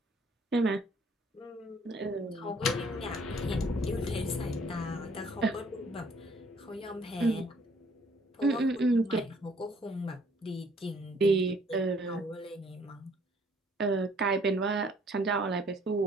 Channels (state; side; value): normal; both; correlation 0.61